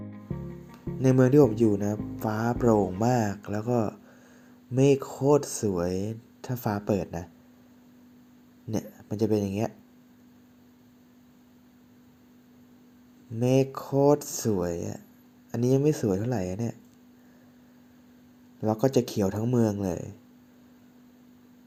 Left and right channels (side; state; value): both; identical; correlation 1.00